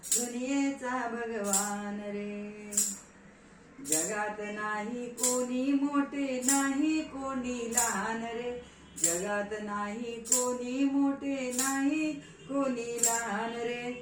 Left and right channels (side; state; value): both; identical; correlation 1.00